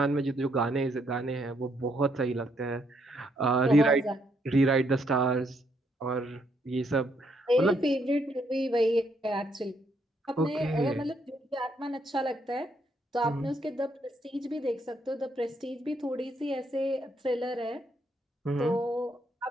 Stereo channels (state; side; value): normal; both; correlation 0.74